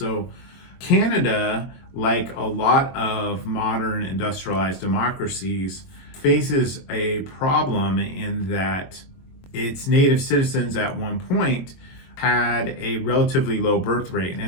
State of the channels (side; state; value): right; late; 22 ms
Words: Canada, like a lot of modern industrialized democracies, faces a problem in that its native citizens at one point had a relatively low birth rate,